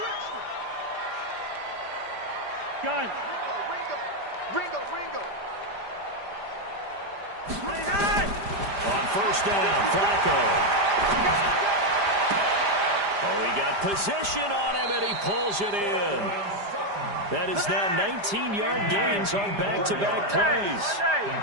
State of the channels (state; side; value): late; left; 5.0 ms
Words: Gun. Ringo. On 1st down, Flacco. Oh, he got position on him, and he pulls it in. That is now 19-yard gains on back-to-back plays.